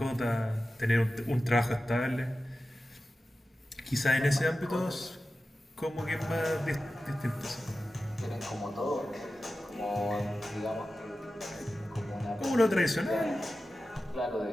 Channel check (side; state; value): both; normal; correlation 0.94